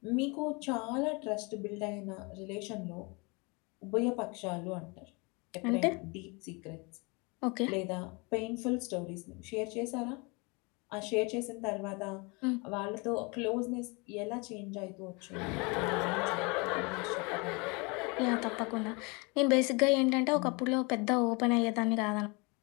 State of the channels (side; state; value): right; quieter; 29.1 dB